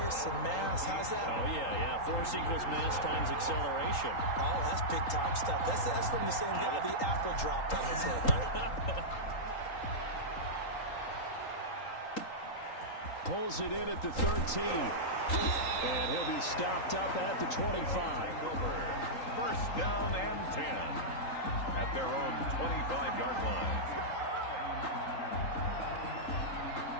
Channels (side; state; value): right; late; 3.8 ms